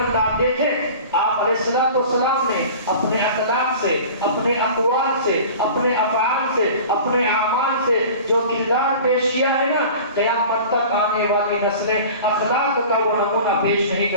آپ دیکھیں آپ علیہ السلام نے اپنے اخلاق سے، اپنے اقوال سے، اپنے افعال سے، اپنے اعمال سے جو کردار پیش کیا ہے نا، قیامت تک آنے والی نسلیں اخلاق کا وہ نمونہ پیش نہیں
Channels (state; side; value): inverted; both; correlation -0.40